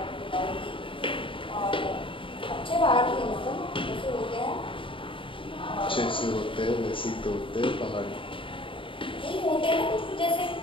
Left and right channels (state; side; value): late; right; 0.25 ms